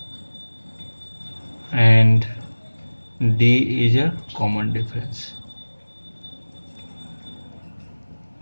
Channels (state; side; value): inverted; both; correlation -1.00